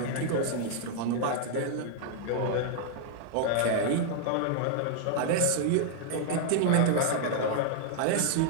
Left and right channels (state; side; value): different; both; correlation -0.01